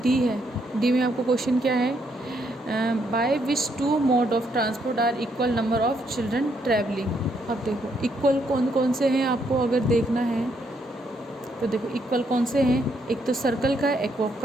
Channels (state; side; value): normal; both; correlation 0.74